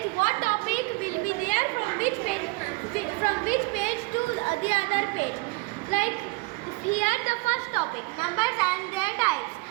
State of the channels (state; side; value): quieter; left; 25.1 dB